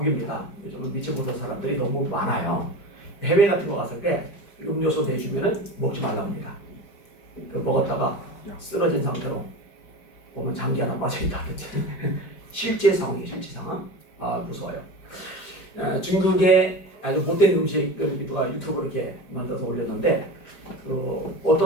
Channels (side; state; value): right; late; 5.0 ms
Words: 요즘은 믿지 못할 사람들이 너무 많아요. 해외 같은 거 갔을 때 음료수 내주면은 먹지 말라 합니다. 먹었다가 쓰러진 상태로 보면 장기 하나 빠져있다든지 실제 상황이에요. 실제 상황. 무서워요. 중국의 아주 못된 음식을 누가 유튜브로 이렇게 만들어서 올렸는데